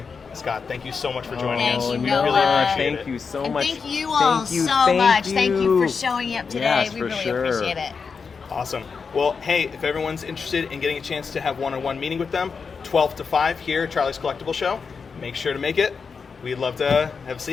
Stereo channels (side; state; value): right; quieter; 5.4 dB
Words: Scott, thank you so much for joining Thank us. you, We Noah. really appreciate Thank it. you so And much. thank you all so much. Thank you for showing up today. Yes, we for really sure. appreciate it. Awesome. Well, hey, if everyone's interested in getting a chance to have one-on-one meeting with them, 12 to 5 here at Charlie's Collectible Show, make sure to make it. We'd love to